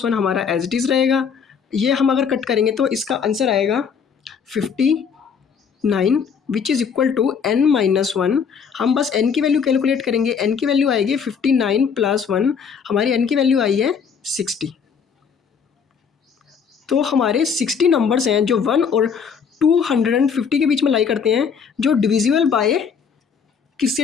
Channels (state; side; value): quieter; right; 6.5 dB